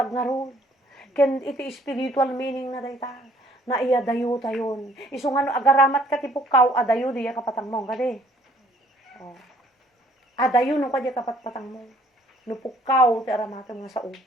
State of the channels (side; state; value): both; normal; correlation 0.60